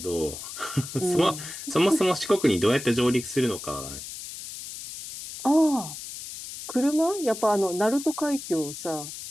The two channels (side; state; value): left; noise; hiss, 10 dB below the sound